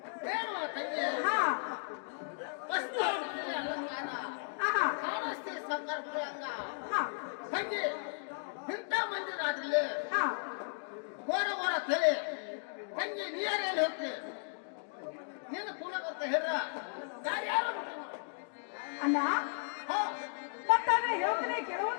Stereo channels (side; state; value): right; silent; digital silence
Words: ಏನು ತಂಗಿ ಹಾ ವಸ್ತು ಅಲಂಕಾರ ಆಹಾ. ಕಾಣಿಸ್ತಿ ಸಾವುಕಾರ ಮಗಳಂಗ ಹಾ. ತಂಗಿ ಇಂಥ ಮಂದಿ ರಾತ್ರಿಲಿ ಹಾ. ಘೋರ ತಲೆ ತಂಗಿ ನೀರಲ್ಲಿ ಹೋಗ್ತಿ ನೀನು ಕೂಡ ಬರ್ತಾ ಹೇಳ್ರ ದಾರಿ ಯಾರು ಅಣ್ಣ ಹೋ ಮತ್ತಾದ್ರೆ ಹೇಳ್ತೀನಿ